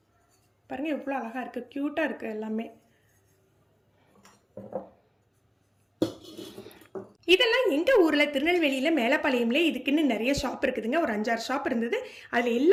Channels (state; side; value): identical; both; correlation 1.00